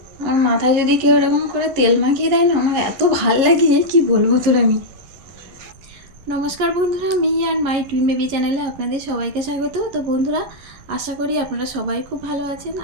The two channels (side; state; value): left; late; 11 ms